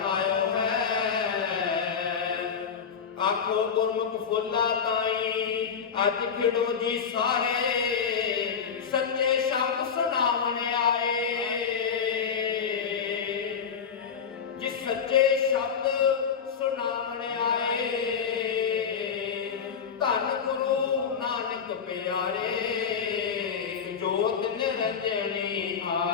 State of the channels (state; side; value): quieter; right; 6.7 dB